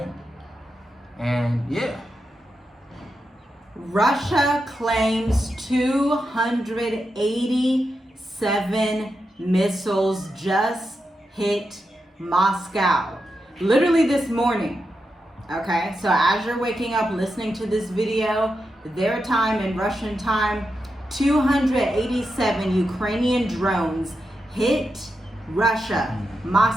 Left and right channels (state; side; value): normal; both; correlation 0.87